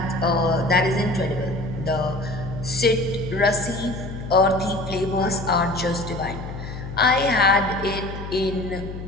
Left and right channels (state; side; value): noise; left; hum, 9 dB below the sound